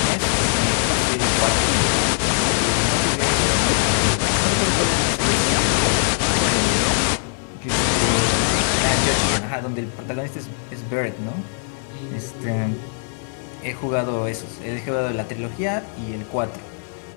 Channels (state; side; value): silent; right; 65 dB below the other